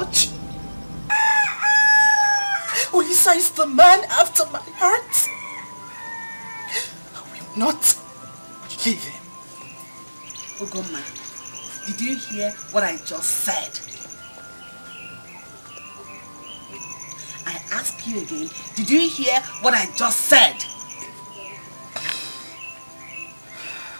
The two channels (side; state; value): both; inverted; correlation -1.00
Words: Olisa is the man after my heart. I will not leave him. Ugoma, did you hear what I just said? I ask you again, did you hear what I just said?